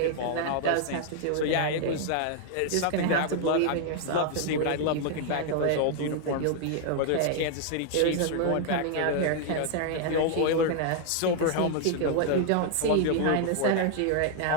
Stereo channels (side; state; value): both; different; correlation 0.00